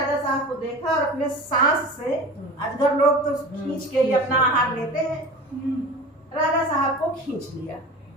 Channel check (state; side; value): normal; both; correlation 0.35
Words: साहब को देखा और अपने सांस से, अजगर लोग तो खींच के ही अपना आहार लेते हैं, राजा साहब को खींच लिया।